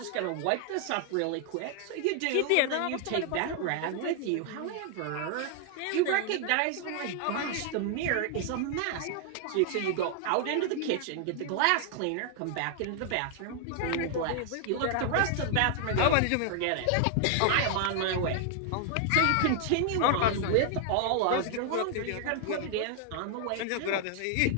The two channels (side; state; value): both; different; correlation 0.00